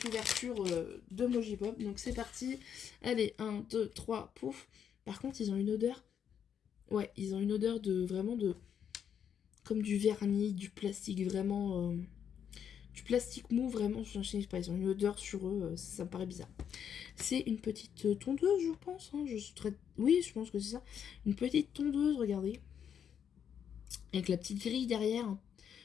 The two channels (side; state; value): right; quieter; 8.3 dB